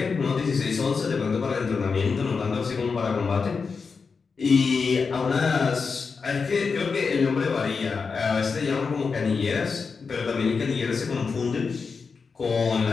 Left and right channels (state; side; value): quieter; right; 5.1 dB